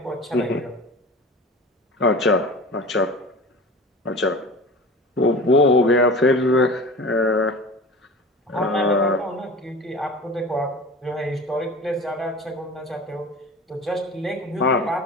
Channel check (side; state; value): both; normal; correlation 0.36